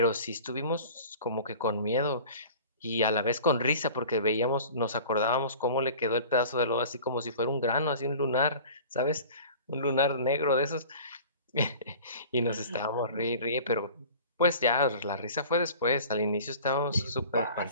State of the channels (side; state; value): both; inverted; correlation -0.42